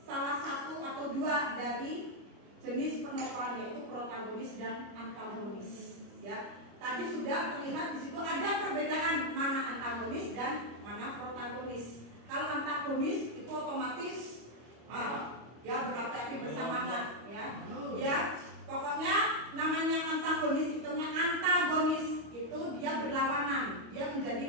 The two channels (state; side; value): late; left; 25 ms